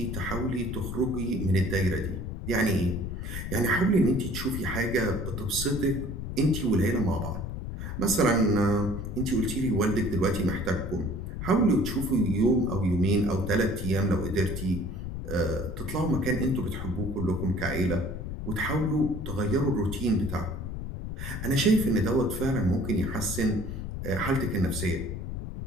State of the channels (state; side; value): noise; left; rumble, 6 dB below the sound